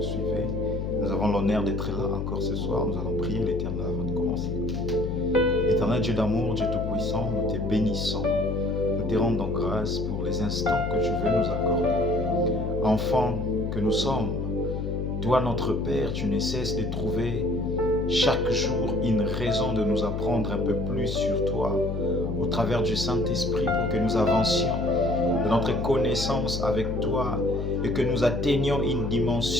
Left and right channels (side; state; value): left; noise; hum, 3 dB below the sound